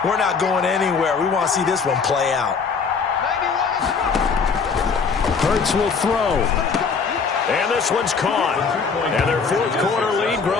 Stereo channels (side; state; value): right; quieter; 5.4 dB